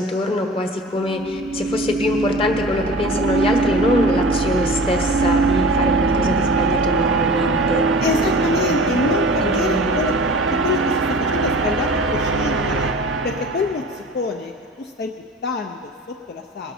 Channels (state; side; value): normal; both; correlation 0.39